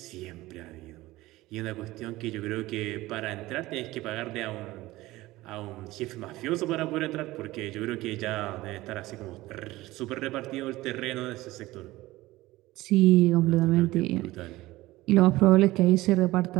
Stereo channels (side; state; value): left; quieter; 18.2 dB